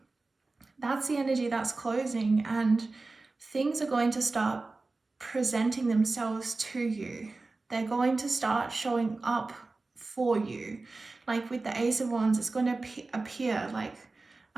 that's the energy that's closing, and things are going to start presenting themselves to you. They're going to start showing up for you. Like with the Ace of Wands, it's going to appear, like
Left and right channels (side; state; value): left; quieter; 3.5 dB